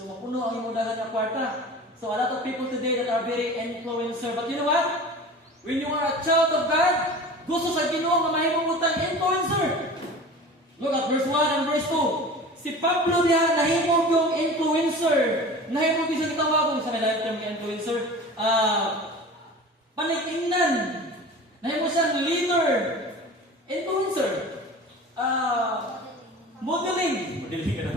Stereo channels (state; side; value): normal; both; correlation 0.37